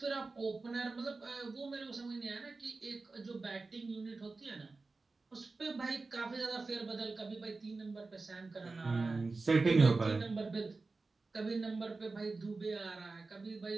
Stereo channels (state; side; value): quieter; left; 3.7 dB